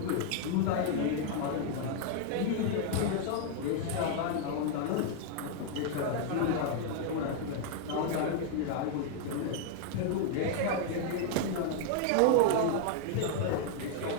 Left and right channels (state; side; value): different; both; correlation 0.00